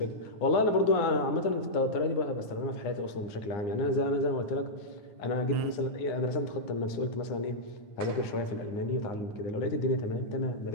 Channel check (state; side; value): late; right; 9.7 ms